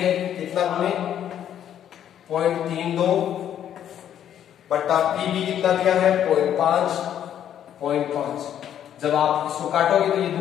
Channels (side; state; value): right; quieter; 10.1 dB